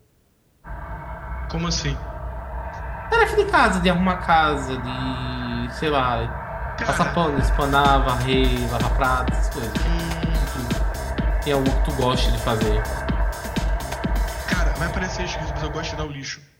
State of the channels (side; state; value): both; identical; correlation 1.00